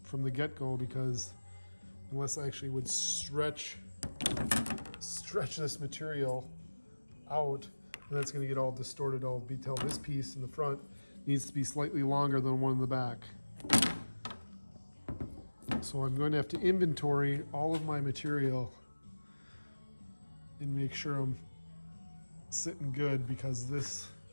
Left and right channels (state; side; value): inverted; both; correlation -1.00